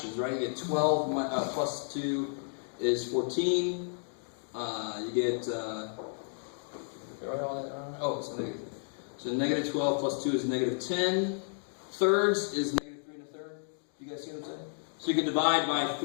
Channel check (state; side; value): silent; right; digital silence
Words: right? You get 12 plus 2 is 14. You get, oh, it's negative. So negative 12 plus 2 is negative 10. Thirds is negative 3 1/3. You guys see what I'm saying? So you can divide by